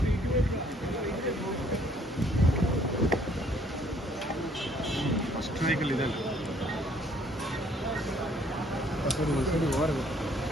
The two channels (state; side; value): normal; both; correlation 0.62